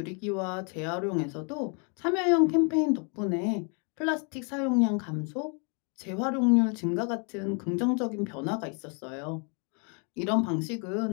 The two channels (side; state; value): right; quieter; 37.5 dB